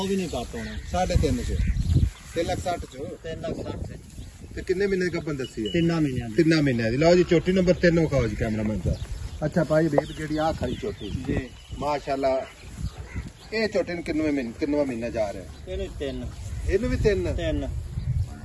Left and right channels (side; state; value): both; identical; correlation 1.00